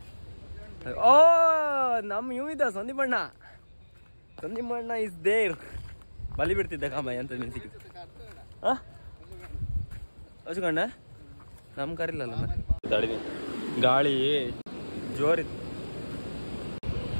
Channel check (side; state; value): both; inverted; correlation -1.00